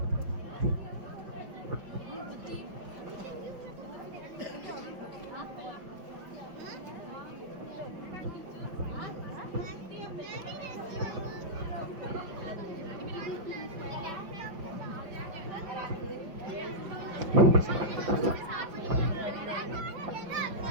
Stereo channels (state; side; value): late; left; 5.4 ms